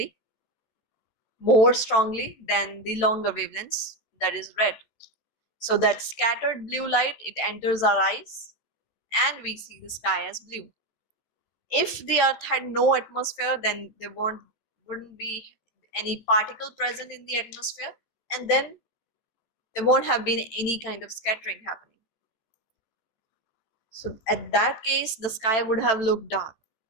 more strongly than the longer wavelengths, that is red. So that scattered blue light, it enters our eyes and we see the sky as blue. If the earth had no atmosphere, then there wouldn't be any particle present in the atmosphere, and then there won't have been any kind of scattering happening. So at that case, the sky would have looked dark.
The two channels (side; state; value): right; late; 13 ms